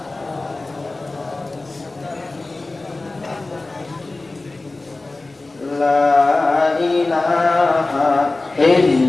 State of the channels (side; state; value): right; quieter; 3.2 dB